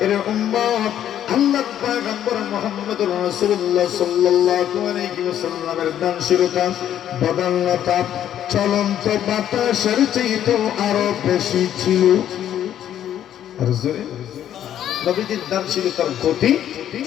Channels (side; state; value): right; quieter; 10.7 dB